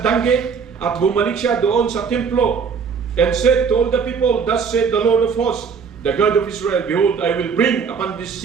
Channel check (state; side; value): quieter; left; 6.0 dB